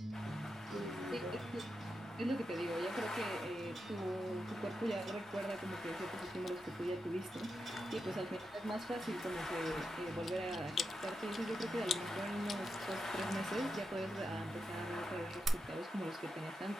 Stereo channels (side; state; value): both; normal; correlation 0.87